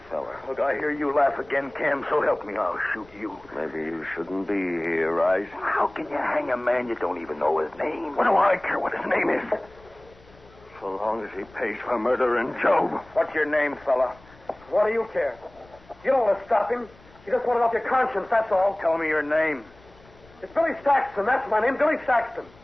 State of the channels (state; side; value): noise; left; rumble, 26 dB below the sound